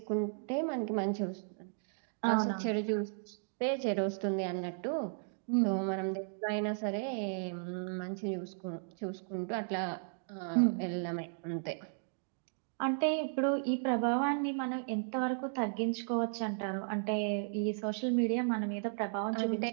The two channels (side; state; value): left; silent; digital silence